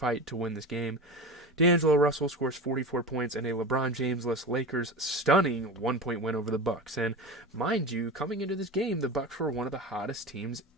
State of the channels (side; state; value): both; normal; correlation 0.28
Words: to win this game. D'Angelo Russell scores 44 points and a LeBron James-less Lakers stunning 1-point win over the Bucks. And mind you, coming into this game, the Bucks were one of the hottest teams